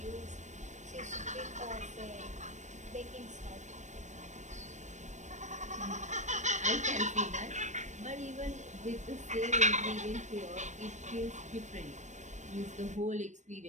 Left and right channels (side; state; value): left; late; 0.34 ms